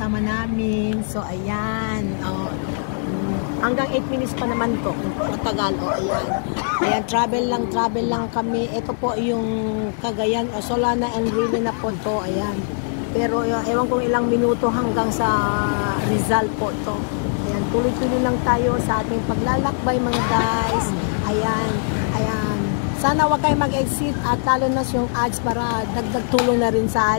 namin. So ayan, oh, hanggang 8 minutes pa naman to, matagal, oh, ayan. Ayan, travel lang kami. Ito po yung Cagayan, oh, Solana and Rile na po to, ayan. Pero ewan kong ilang minuto hanggang sa Rizal po to. Ayan, tuloy-tuloy lang tayo sa ating paglalakbay mga guys. Ayan, ayan. Sana wag kayo mag-exit at lalo na yung ads para dagdag tulong na rin sa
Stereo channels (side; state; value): right; silent; digital silence